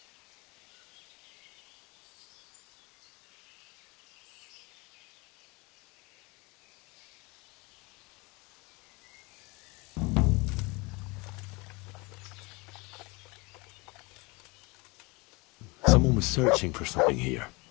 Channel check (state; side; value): quieter; right; 26.3 dB